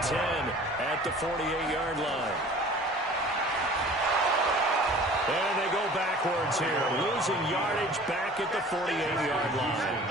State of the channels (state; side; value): normal; both; correlation 0.46